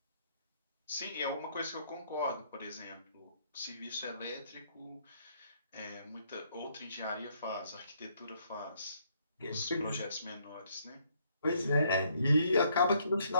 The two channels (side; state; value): both; inverted; correlation -0.69